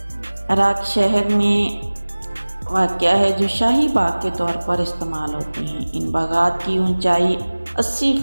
عراق شہر میں واقع ہے جو شاہی باغ کے طور پر استعمال ہوتے ہیں۔ ان باغات کی اونچائی 80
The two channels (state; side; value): inverted; both; correlation -1.00